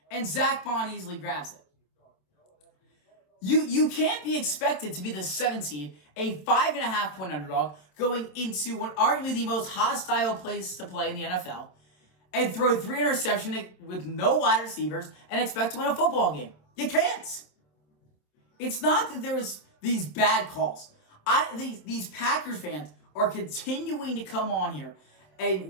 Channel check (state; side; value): late; right; 27 ms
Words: and Zach Bond easily grabs it. You can't be expected to be the 7th seed, a 5.5-point underdog, going into what arguably the most hostile place to play in the NFL, and throw 3 interceptions with no wide receivers and expect to win a football game. You can't. It's not that there's these bad calls. These Packers fans are continuing to come on here